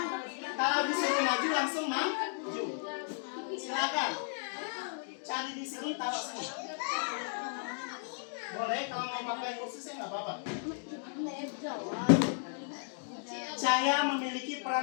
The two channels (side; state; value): right; silent; 55 dB below the other